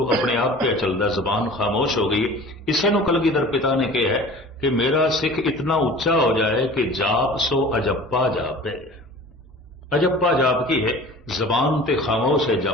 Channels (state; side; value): normal; both; correlation 0.42